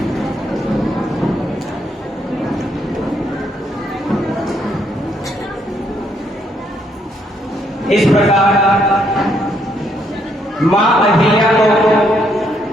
इस प्रकार मां अहिल्या को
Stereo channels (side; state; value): both; normal; correlation 0.72